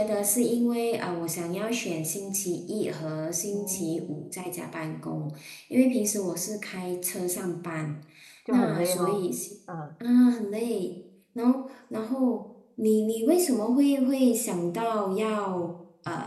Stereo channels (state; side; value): identical; both; correlation 1.00